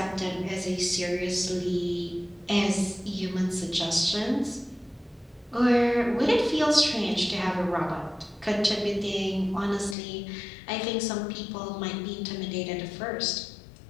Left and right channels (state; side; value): drops out; right; at 10.0 s